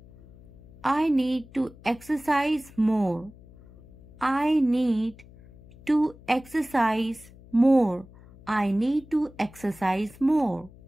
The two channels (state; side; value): noise; left; hum, 22 dB below the sound